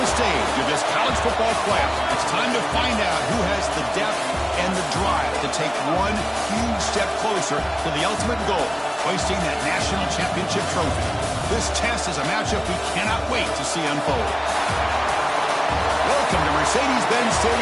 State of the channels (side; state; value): both; identical; correlation 1.00